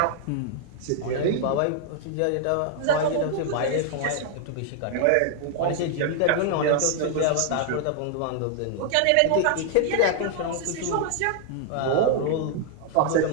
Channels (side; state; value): both; different; correlation 0.00